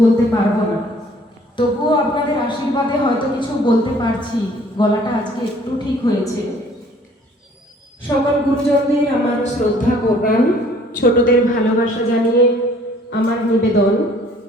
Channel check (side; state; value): both; normal; correlation 0.56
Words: বলতে পারবো না, তবুও আপনাদের আশীর্বাদে হয়তো কিছু বলতে পারছি। গলাটা আজকে একটু ঠিক হয়েছে। সকল গুরুজনদের আমার শ্রদ্ধা প্রণাম, ছোটদের ভালোবাসা জানিয়ে আমার নিবেদন।